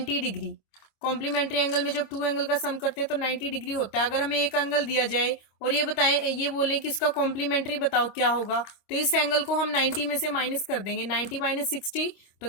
डिग्री। कॉम्प्लीमेंट्री एंगल में जब टू एंगल का सम करते हैं तो 90 डिग्री होता है। अगर हमें एक एंगल दिया जाए और ये बोलें कि इसका कॉम्प्लीमेंट्री बताओ क्या होगा, तो इस एंगल को हम 90 में से माइनस कर देंगे। 90 माइनस 60 तो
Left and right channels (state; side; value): late; right; 25 ms